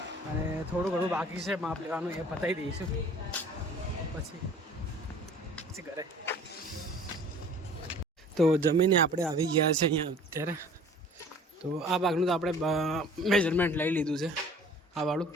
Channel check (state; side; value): normal; both; correlation 0.48